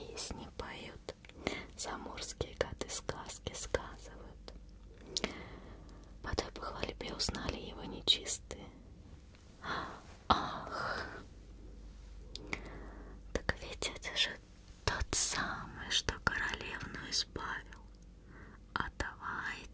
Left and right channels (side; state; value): both; identical; correlation 1.00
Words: поют, заморские коты сказки сказывают. По той похвальбе узнали его нечистые. Ах, так ведь это же тот самый, что королевну избавил. А